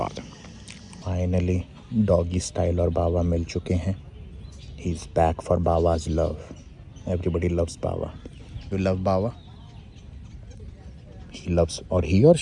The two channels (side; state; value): both; identical; correlation 1.00